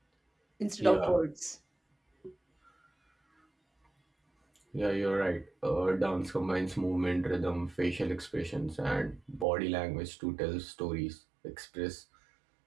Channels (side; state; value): left; drops out; at 9.5 s